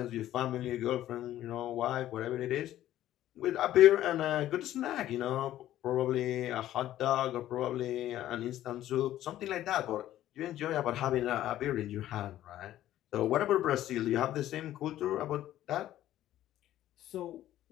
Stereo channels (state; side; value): quieter; right; 13.2 dB